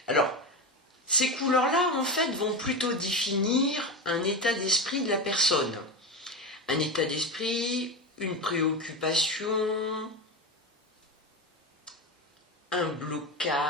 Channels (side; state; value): both; normal; correlation 0.19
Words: Alors, ces couleurs-là, en fait, vont plutôt définir un état d'esprit de la personne. Un état d'esprit, une préoccupation, un